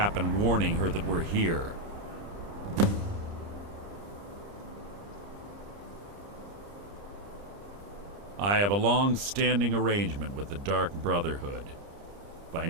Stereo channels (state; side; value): late; left; 30 ms